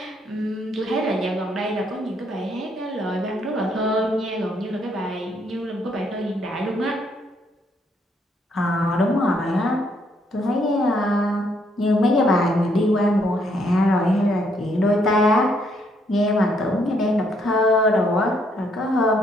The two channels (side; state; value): both; normal; correlation 0.71